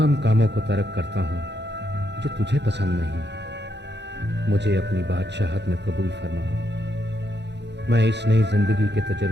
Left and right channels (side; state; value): left; late; 0.50 ms